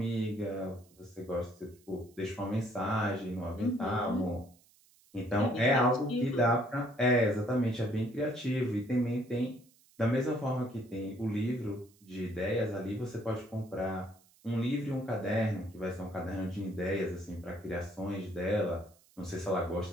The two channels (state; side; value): noise; right; hiss, 30 dB below the sound